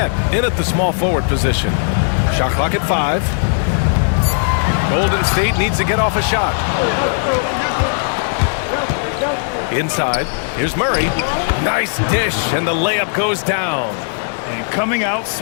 in at the small forward position. Shot clock at 5. Golden State needs to get off a shot. Inside, here's Murray. Nice dish, and the layup goes down. And coming out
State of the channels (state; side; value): silent; right; digital silence